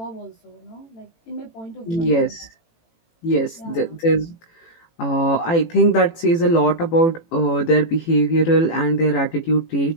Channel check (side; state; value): right; late; 18 ms